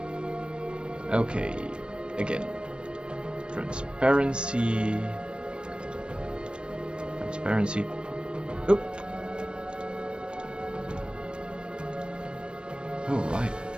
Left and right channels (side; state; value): left; late; 0.053 ms